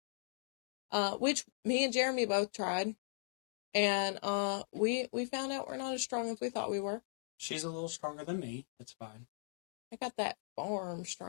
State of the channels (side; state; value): right; silent; digital silence